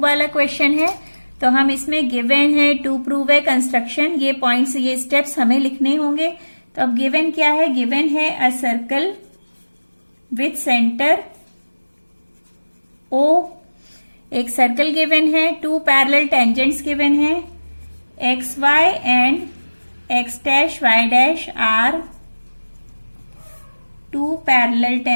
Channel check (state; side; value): inverted; both; correlation -1.00